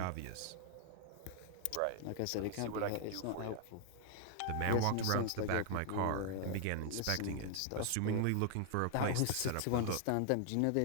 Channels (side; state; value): both; different; correlation 0.00